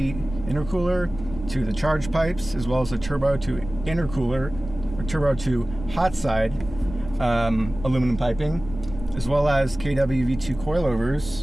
intercooler to the charge pipes, as well as a turbo to intercooler, or turbo to hot side aluminum piping, as well as KW V2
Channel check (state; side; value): noise; left; rumble, 12 dB below the sound